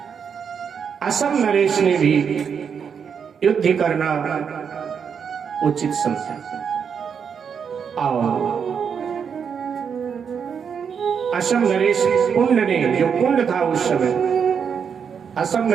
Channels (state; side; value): quieter; left; 6.9 dB